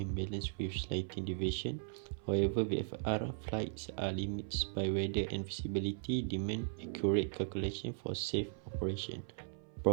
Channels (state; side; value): silent; left; 53 dB below the other